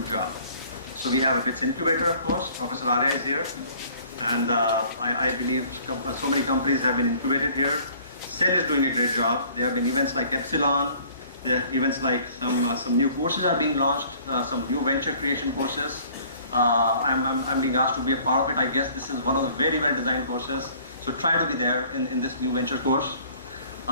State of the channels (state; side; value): inverted; both; correlation -0.54